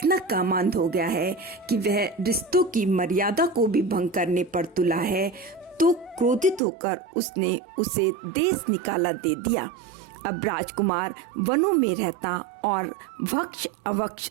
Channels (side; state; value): left; drops out; at 6.6 s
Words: कामांध हो गया है कि वह रिश्तों की मर्यादा को भी भंग करने पर तुला है, तो क्रोधित होकर उसने उसे देश निकाला दे दिया। अब राजकुमार वनों में रहता और भक्ष अवक्ष